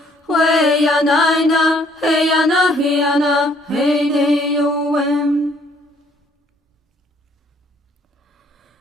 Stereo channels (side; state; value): both; normal; correlation 0.64